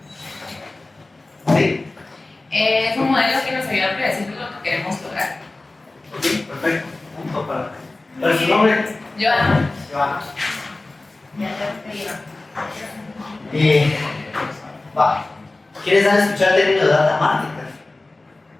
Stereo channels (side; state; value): right; quieter; 3.0 dB